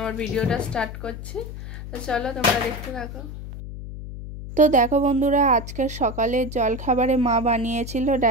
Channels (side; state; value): left; noise; hum, 10 dB below the sound